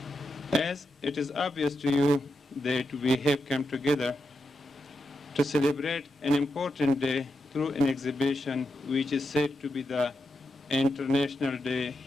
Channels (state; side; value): normal; both; correlation 0.86